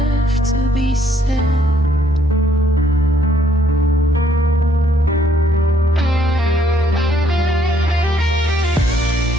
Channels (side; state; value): both; normal; correlation 0.67